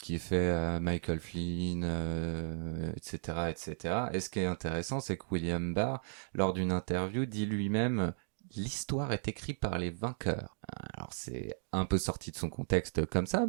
est fait à Michael Flynn, etc., etc. Et ce qui est intéressant, c'est que William Barr, lors d'une interview, dit lui-même l'histoire est écrite par les vainqueurs. Alors c'est un peu sorti de son contexte comme ça,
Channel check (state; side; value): silent; left; digital silence